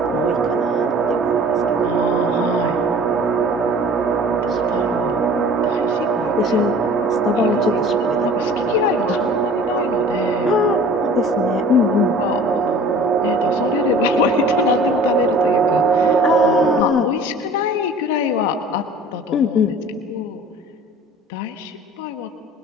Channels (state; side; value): normal; both; correlation 0.46